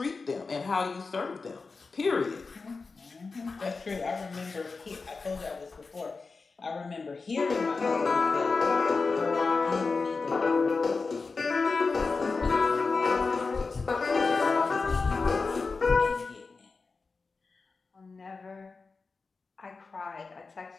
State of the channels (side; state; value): right; quieter; 4.3 dB